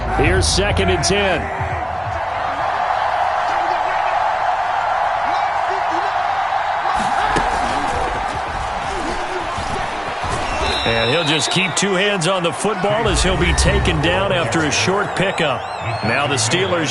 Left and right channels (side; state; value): both; identical; correlation 1.00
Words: Here's 2nd and 10. And he'll just keep two hands on the football as he'll be taken down after a short pickup. Now the